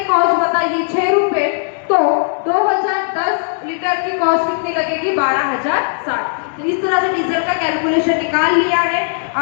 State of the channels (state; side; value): silent; right; 68 dB below the other